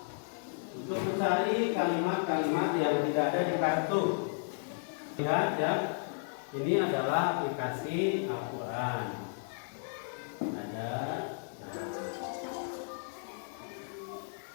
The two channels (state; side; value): silent; right; 55 dB below the other